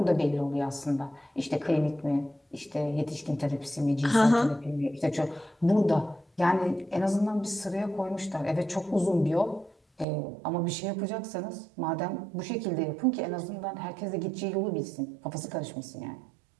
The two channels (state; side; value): drops out; left; at 10.1 s